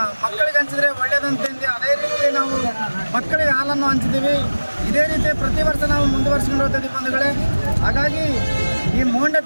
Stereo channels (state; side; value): inverted; both; correlation -1.00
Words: ಮಕ್ಕಳಿಗೆ ಹಂಚಿದ್ರೆ ಒಳ್ಳೆಯದಂತಂದು ಅದೇ ರೀತಿ ನಾವು ಮಕ್ಕಳಿಗೆ ಹಾಲನ್ನು ಹಂಚಿದ್ದೀವಿ. ಇದೇ ರೀತಿ ಪ್ರತಿ ವರ್ಷ ನಾವು ಮುಂದುವರಿಸ್ಕೊಂಡು ಹೋಗ್ತೀವಿ ಬಂಧುಗಳೇ. ಹಾಗಾಗಿ ಈ